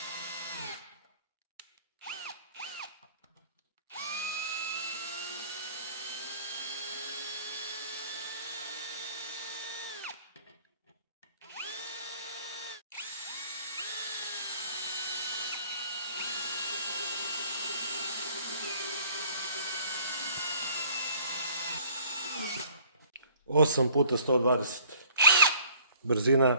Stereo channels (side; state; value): both; inverted; correlation -0.55